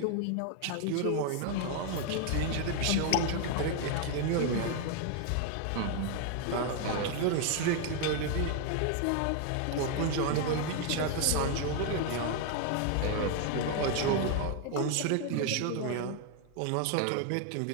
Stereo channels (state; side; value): different; both; correlation 0.00